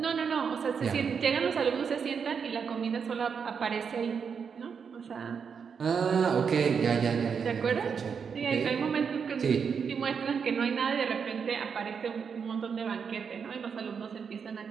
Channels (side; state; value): left; quieter; 6.4 dB